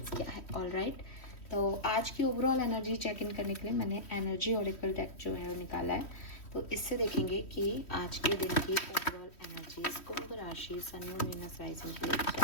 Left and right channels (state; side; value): late; right; 3.1 ms